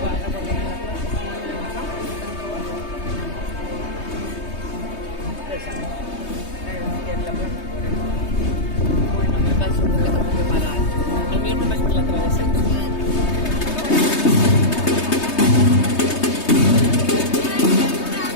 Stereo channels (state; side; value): late; right; 3.2 ms